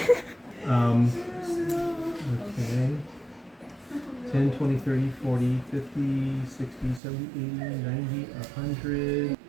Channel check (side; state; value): left; drops out; at 7.0 s